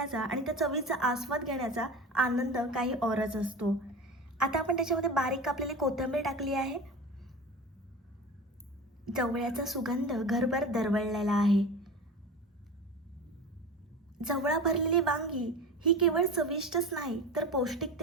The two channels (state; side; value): normal; both; correlation 0.31